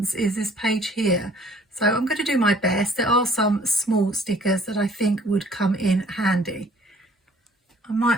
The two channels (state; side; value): normal; both; correlation 0.57